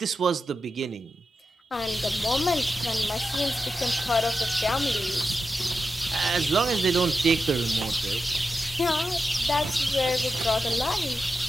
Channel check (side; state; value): both; normal; correlation 0.90